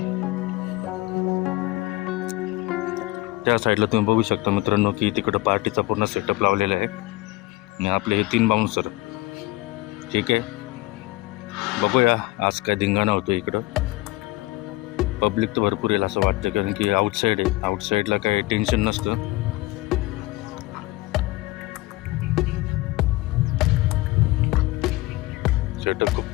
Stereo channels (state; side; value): quieter; right; 19.7 dB